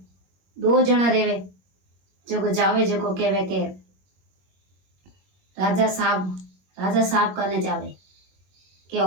दो जना रेवे जो जावे जो कहवे के राजा साहब करने जावे के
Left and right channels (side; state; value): left; late; 21 ms